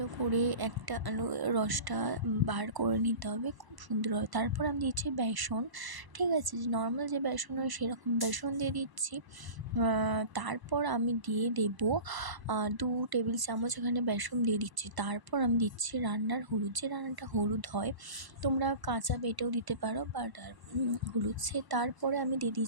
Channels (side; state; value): left; late; 1.0 ms